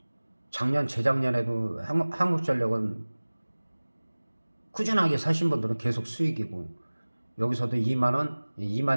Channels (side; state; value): both; inverted; correlation -1.00